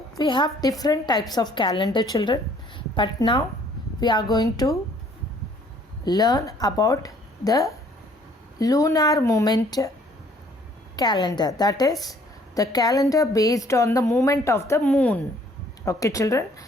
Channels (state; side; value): normal; both; correlation 0.59